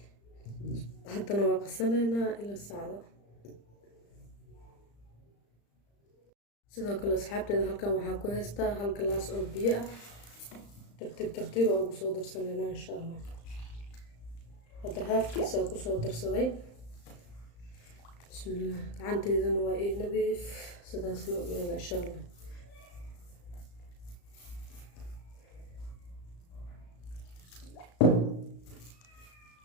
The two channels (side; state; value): right; late; 35 ms